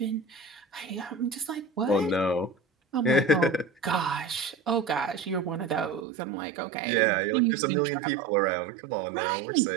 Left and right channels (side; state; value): left; drops out; at 6.1 s